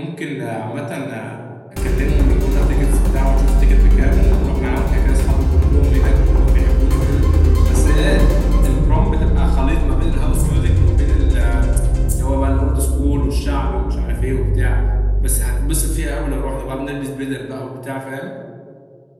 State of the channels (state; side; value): identical; both; correlation 1.00